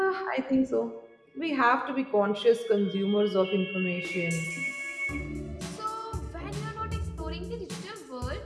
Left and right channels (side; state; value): both; identical; correlation 1.00